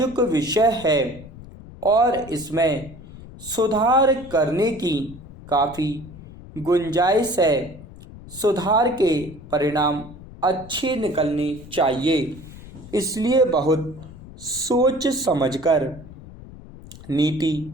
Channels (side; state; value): left; noise; rumble, 17 dB below the sound